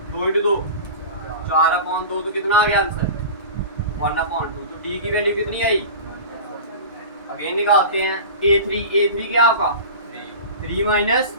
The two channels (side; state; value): both; inverted; correlation -0.34